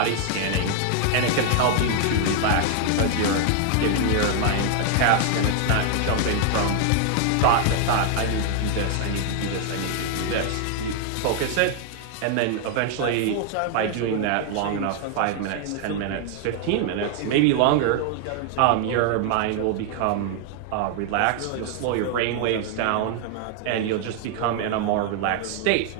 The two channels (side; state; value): both; different; correlation 0.00